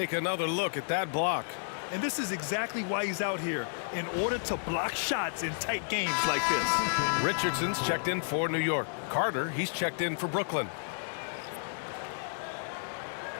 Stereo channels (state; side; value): silent; right; digital silence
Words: another look at that block. And this is exactly why he's out here, in order to block shots in tight games like this. Richardson's checked in for New York. Carter, he's checked in for Brooklyn.